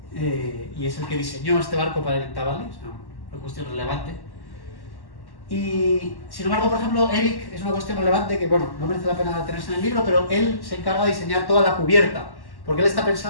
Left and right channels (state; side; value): late; right; 1.1 ms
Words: y es el que diseñó este barco para el Intavale, es una cuestión relevante. Y sin embargo, por ejemplo, Eric es una cuestión relevante que, bueno, no merece la pena tenerse en el libro, pero él se encarga de diseñar toda la cubierta, porque él está